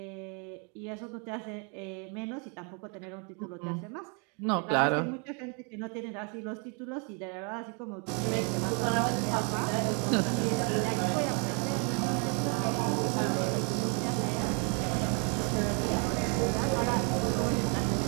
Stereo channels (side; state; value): left; quieter; 35.6 dB